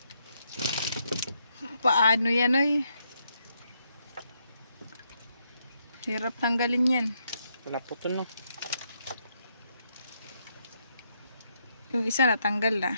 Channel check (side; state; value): both; inverted; correlation -0.77